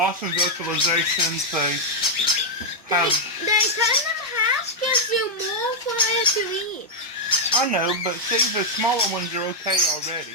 vocalizations. They cutting them half gives you more for it to eat. I know, but see, the smaller ones are okay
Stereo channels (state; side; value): normal; both; correlation -0.03